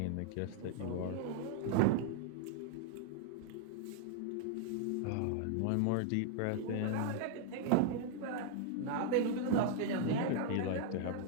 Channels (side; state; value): both; different; correlation 0.00